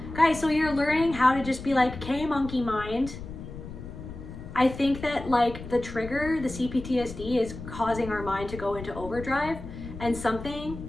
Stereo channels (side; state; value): left; noise; rumble, 11 dB below the sound